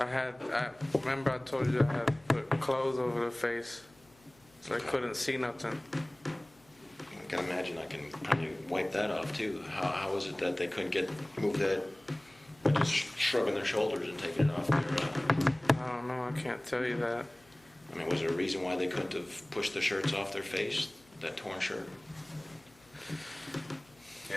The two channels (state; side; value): noise; left; hum, 29 dB below the sound